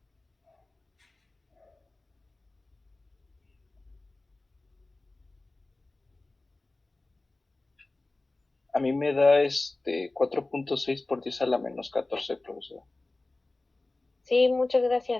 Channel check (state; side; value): quieter; right; 3.0 dB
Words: A mí me da 4.6 por 10 a la menos 14, profesora. Sí, muchas